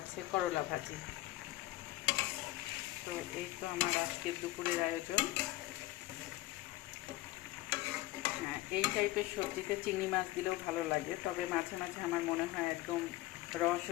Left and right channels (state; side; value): quieter; right; 17.3 dB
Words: করলা ভাজি। তো এই তো আমার আজকের দুপুরের আয়োজন। হ্যাঁ, এই টাইপের সবজিতে চিংড়ি মাছ দিলেও ভালো লাগে, তবে মাঝে মাঝে আমার মনে হয় একদম র